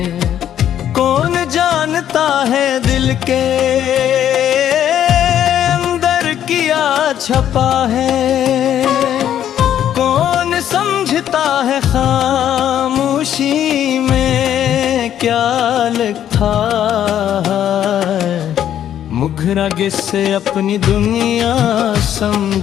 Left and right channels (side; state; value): right; quieter; 10.5 dB